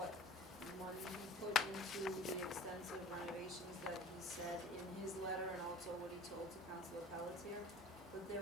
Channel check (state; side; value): normal; both; correlation 0.44